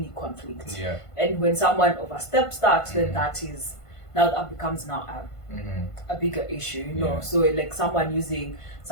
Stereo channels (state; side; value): late; right; 1.5 ms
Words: conflict. And when someone oversteps that, then that becomes now a bigger issue, So like someone using